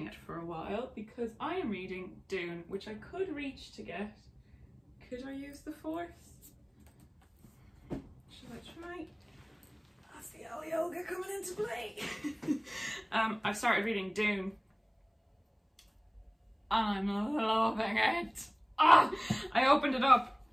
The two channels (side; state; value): both; identical; correlation 1.00